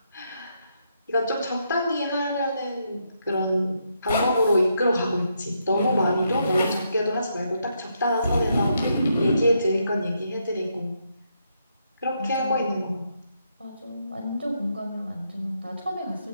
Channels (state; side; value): inverted; both; correlation -0.78